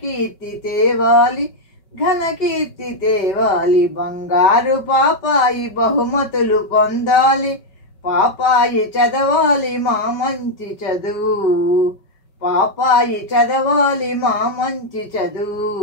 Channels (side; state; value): right; late; 5.3 ms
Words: తేవాలి, ఘనకీర్తి తేవాలి. బంగారు పాపాయి బహుమతులు పొందాలి, పాపాయి చదవాలి మా మంచి చదువు, పాపాయి చదవాలి మా మంచి చదువు.